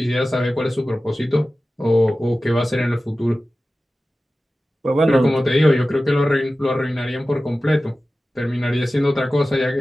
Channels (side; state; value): both; normal; correlation 0.95